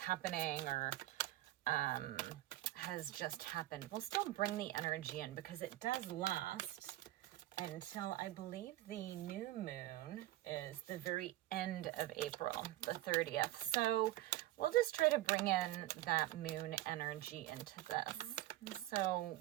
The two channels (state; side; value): quieter; left; 16.0 dB